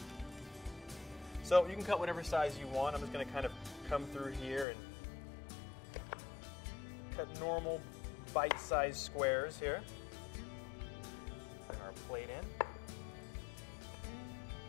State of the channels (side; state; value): right; drops out; at 4.7 s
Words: So you can cut whatever size you want. I'm just going to kind of come through here and cut normal bite-sized squares here. Bring our plate in.